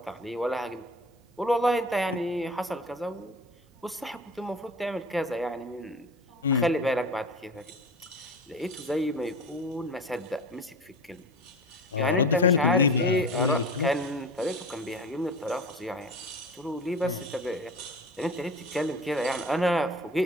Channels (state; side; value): normal; both; correlation 0.34